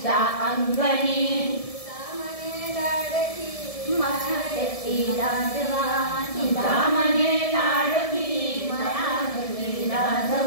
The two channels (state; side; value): late; right; 1.7 ms